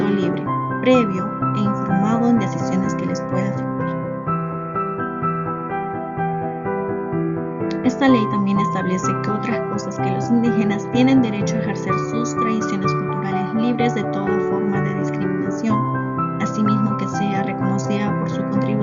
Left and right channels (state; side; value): identical; both; correlation 1.00